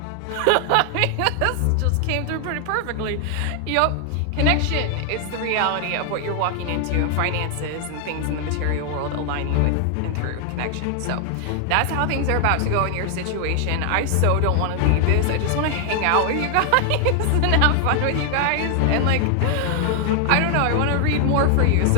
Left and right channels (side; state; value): both; different; correlation 0.00